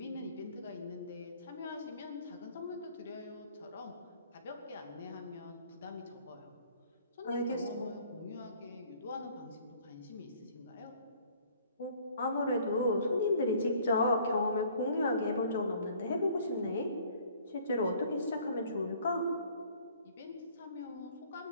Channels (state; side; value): inverted; both; correlation -0.56